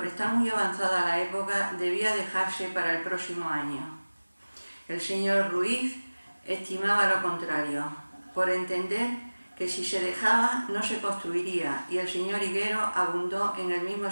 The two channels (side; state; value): both; inverted; correlation -1.00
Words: estar muy avanzada la época debía dejarse para el próximo año. El señor Ruiz estimaba lo contrario, por entender que si se dejaba no se construiría, y el señor Higuero abundó en el mismo